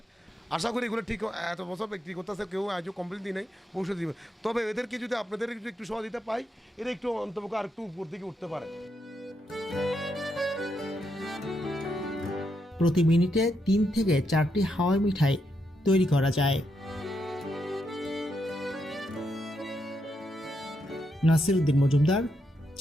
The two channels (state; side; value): normal; both; correlation 0.81